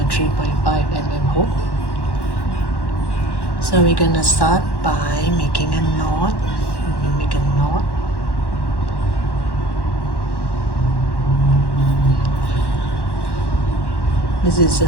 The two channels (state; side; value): late; right; 1.1 ms